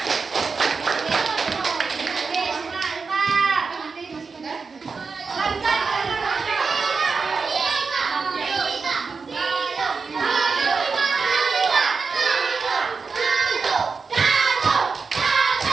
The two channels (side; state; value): left; quieter; 4.9 dB